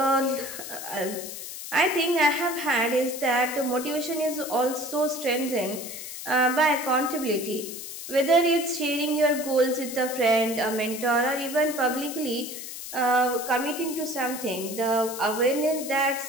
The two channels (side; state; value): left; noise; hiss, 9 dB below the sound